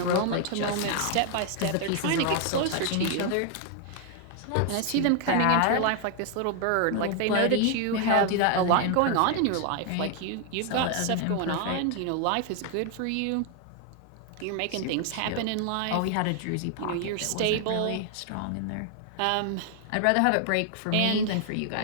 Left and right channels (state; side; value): different; both; correlation 0.00